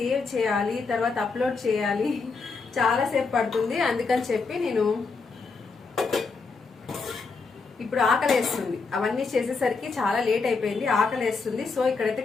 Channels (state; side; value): quieter; right; 4.5 dB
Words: చేయాలి, తర్వాత అప్లోడ్ చేయాలి, చాలాసేపు పడుతుంది. అందుకని చెప్పి నేను ఇప్పుడు ఆకలేస్తుంది. అవన్నీ చేసేసరికి చాలా లేట్ అయిపోయింది, ఆకలేస్తుంది. సో ఇక్కడైతే